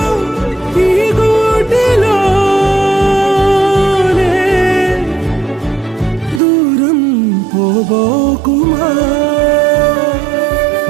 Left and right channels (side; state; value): left; drops out; at 6.4 s